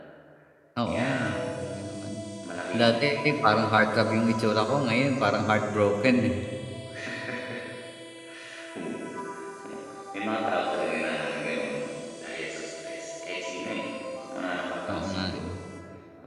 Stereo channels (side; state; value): both; identical; correlation 1.00